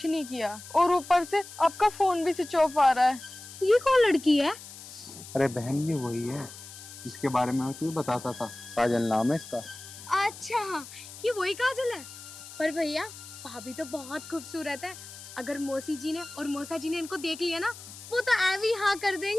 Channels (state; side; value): noise; left; hiss, 15 dB below the sound